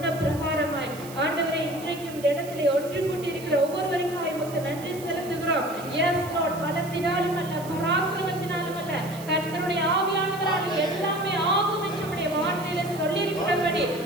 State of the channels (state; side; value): noise; right; hiss, 17 dB below the sound